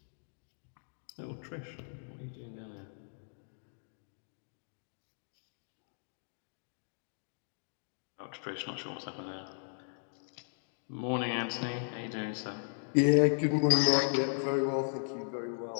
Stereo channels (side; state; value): right; silent; digital silence